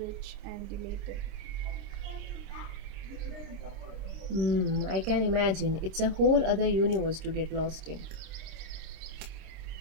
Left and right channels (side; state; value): left; late; 26 ms